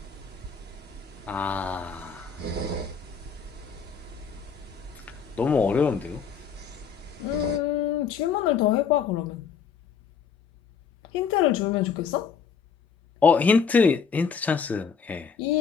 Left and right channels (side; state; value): right; quieter; 6.3 dB